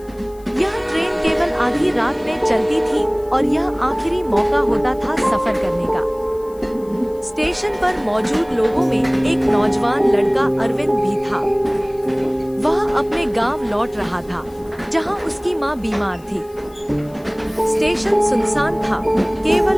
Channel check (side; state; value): left; noise; hiss, 27 dB below the sound